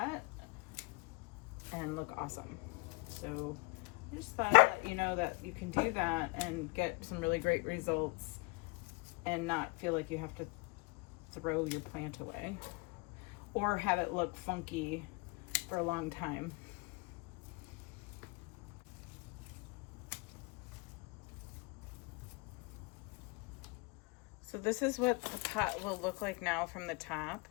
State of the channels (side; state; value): right; quieter; 28.1 dB